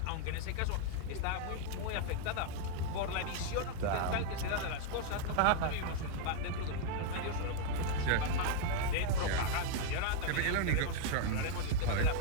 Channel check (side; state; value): both; different; correlation 0.00